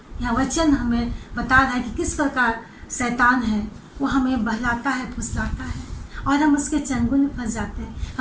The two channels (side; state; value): both; identical; correlation 1.00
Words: यहाँ वचन हमें बता रहा है कि किस प्रकार शैतान है वो हमें बहलाता है, फुसलाता है और हम उसके चंगुल में फंस जाते हैं।